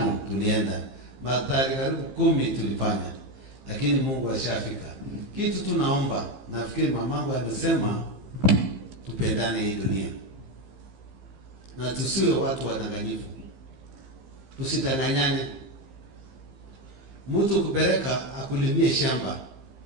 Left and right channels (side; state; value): left; late; 15 ms